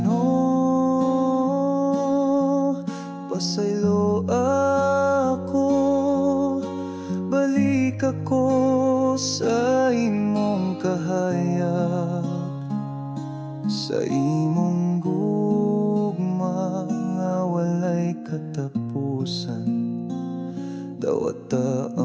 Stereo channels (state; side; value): identical; both; correlation 1.00